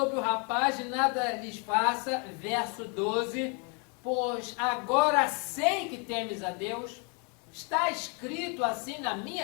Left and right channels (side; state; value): right; quieter; 35.3 dB